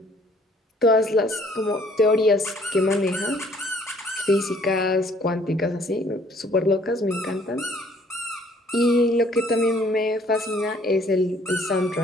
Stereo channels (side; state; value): both; normal; correlation 0.60